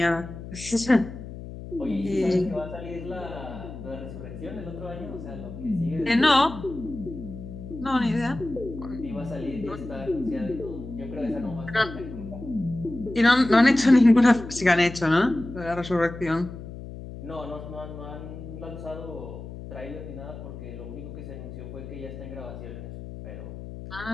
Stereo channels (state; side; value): noise; left; hum, 11 dB below the sound